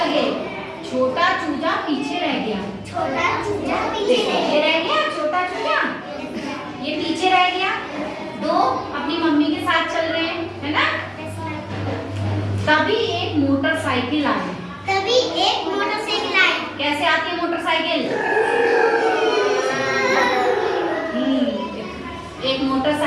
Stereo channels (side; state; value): both; identical; correlation 1.00